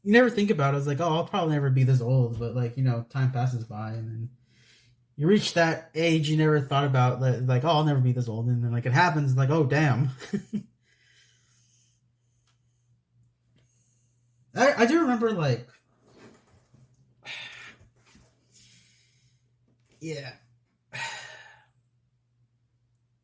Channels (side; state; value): both; identical; correlation 1.00